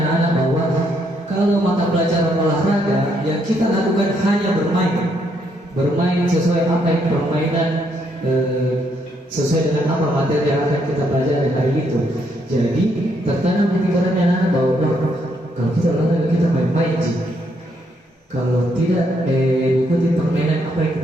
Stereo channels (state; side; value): normal; both; correlation 0.74